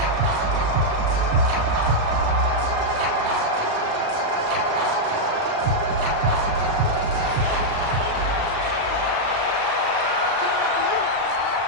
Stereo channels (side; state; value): left; late; 35 ms